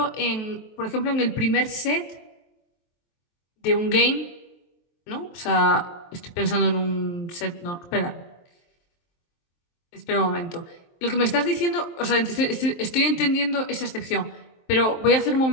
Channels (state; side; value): late; right; 23 ms